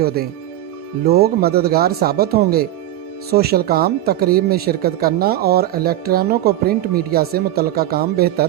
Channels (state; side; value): quieter; left; 13.6 dB